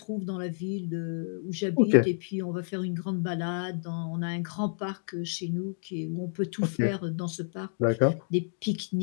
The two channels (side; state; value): right; silent; digital silence